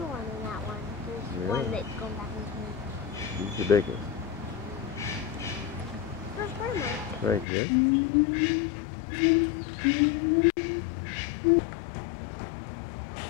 one than that one. There's one that's going back into me. He's the biggest. Where's Grandma? Right here.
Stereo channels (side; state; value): right; drops out; at 7.5 s